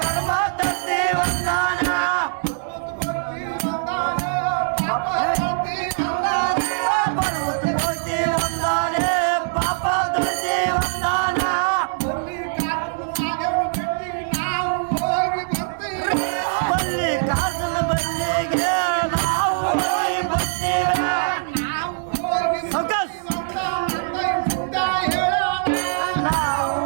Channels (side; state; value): left; silent; digital silence